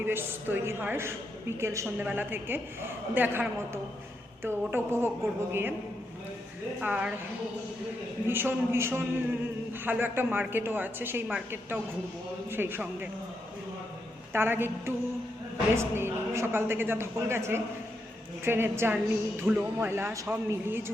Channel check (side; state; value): both; normal; correlation 0.82